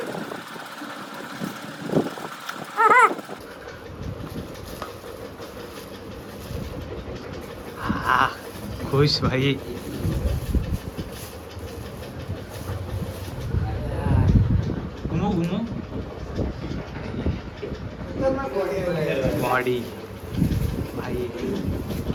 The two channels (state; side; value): identical; both; correlation 1.00